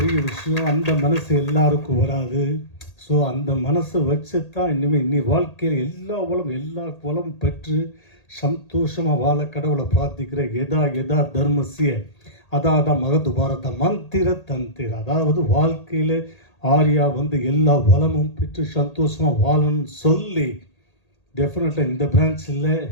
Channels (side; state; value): right; late; 1.8 ms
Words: விஷயம். அந்த மனசு எல்லாருக்கும் வராது. ஸோ அந்த மனசை வச்சு தான் இன்னி வாழ்க்கையில் எல்லா வளமும் பெற்று சந்தோஷமாக வாழ கடவுளை பிரார்த்திக்கிற எதா தர்மசிய அதான் மகத்து பாரத மந்திர தந்திர. அதாவது வாழ்க்கையில் ஆரியா எல்லா வளமும் பெற்று சந்தோஷமாக வாழணும்னு சொல்லி டெஃபினட்டாக இந்த பிரான்ச்சில்